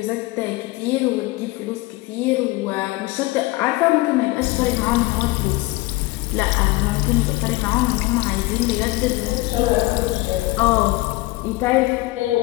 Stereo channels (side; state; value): right; quieter; 20.6 dB